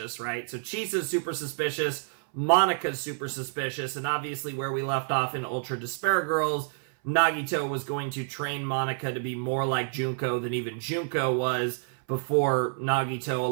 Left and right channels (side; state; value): left; silent; 58 dB below the other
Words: right? So Chisa's super suspicious, Monica's super suspicious, and obviously where we left off in Ultra Despair Girls, Nagito was going to train Monica to be more like Junko than even Junko was, before Nagito,